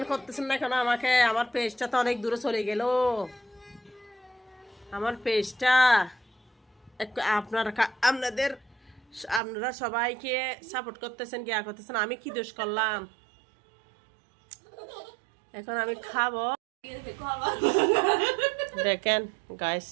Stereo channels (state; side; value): drops out; left; at 9.4 s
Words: করতেছেন না কেন আমাকে? আমার পেজটা তো অনেক দূরে চলে গেল, আমার পেজটা আপনারা সবাইকে সাপোর্ট করতেছেন, গিয়া করতেছেন, আমি কি দোষ করলাম? এখন আমি খাবো, দেখেন গাইস